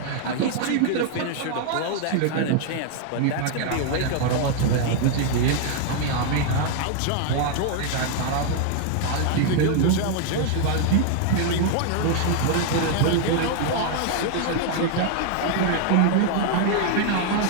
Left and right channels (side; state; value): both; different; correlation 0.00